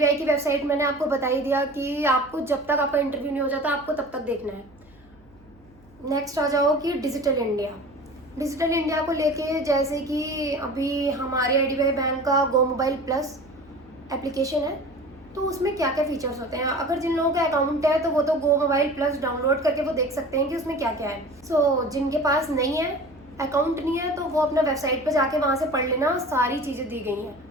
की वेबसाइट मैंने आपको बता ही दिया कि आपको जब तक आपका इंटरव्यू नहीं हो जाता आपको तब तक देखना है। नेक्स्ट आ जाओ कि डिजिटल इंडिया। डिजिटल इंडिया को लेके जैसे कि अभी हमारे आईडीबीआई बैंक का गो मोबाइल प्लस एप्लीकेशन है, तो उसमें क्या क्या फीचर्स होते हैं। अगर जिन लोगों का अकाउंट है तो वो तो गो मोबाइल प्लस डाउनलोड करके वो देख सकते हैं कि उसमें क्या क्या है। जिनके पास नहीं है, अकाउंट नहीं है, तो वो अपना वेबसाइट पर जाके वहाँ से पढ़ लेना, सारी चीज़ें दी गई हैं।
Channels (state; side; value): noise; right; hum, 29 dB below the sound